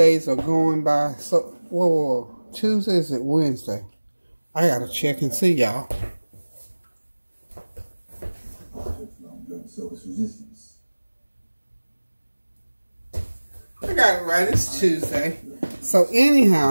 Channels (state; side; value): inverted; both; correlation -1.00